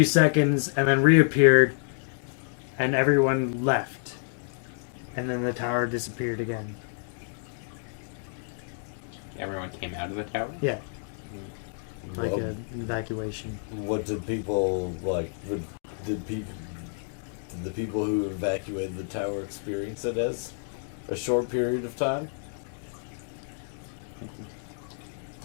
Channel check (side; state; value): right; silent; 59 dB below the other